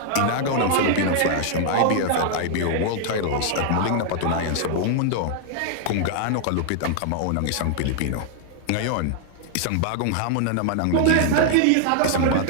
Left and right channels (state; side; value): different; both; correlation 0.00